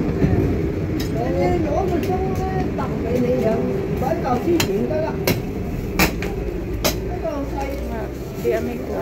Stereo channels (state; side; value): identical; both; correlation 1.00